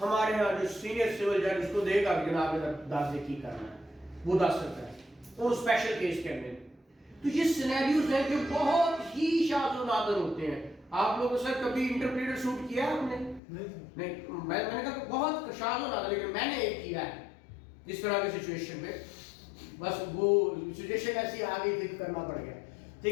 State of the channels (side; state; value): right; drops out; at 13.4 s